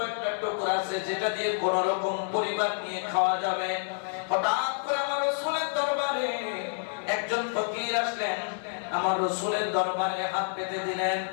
একটা টুকরা আছে যেটা দিয়ে কোন রকম পরিবার নিয়ে খাওয়া যাবে। হঠাৎ করে আমার রাসূলের দরবারে একজন ফকির আসলেন, আমার রাসূলের দরবারে হাত পেতে দিলেন।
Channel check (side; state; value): right; silent; 59 dB below the other